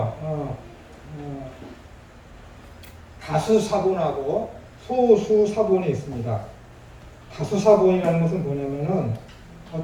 다수사본하고 소수사본이 있습니다. 다수사본이라는 것은 뭐냐면은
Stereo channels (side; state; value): both; identical; correlation 1.00